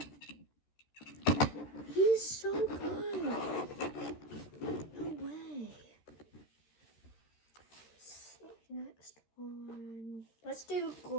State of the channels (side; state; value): right; late; 13 ms